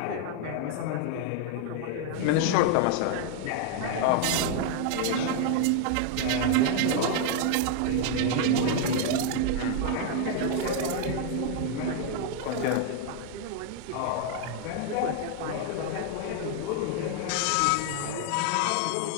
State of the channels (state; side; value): different; both; correlation 0.00